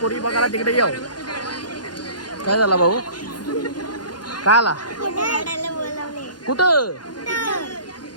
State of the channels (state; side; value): late; right; 0.70 ms